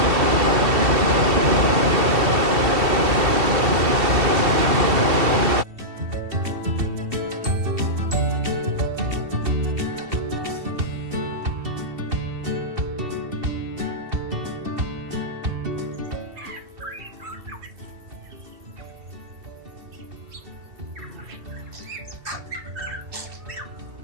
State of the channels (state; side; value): late; left; 2.7 ms